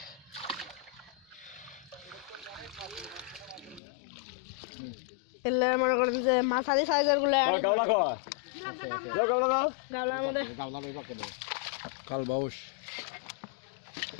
এলে মনে করেন যে মাছালি সাইজের গুলো কাবলা কয় যাও কাবলা দাও গাবলার মধ্যে গাবলা লই পাকে দাও কাল বাউস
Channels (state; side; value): drops out; right; at 3.8 s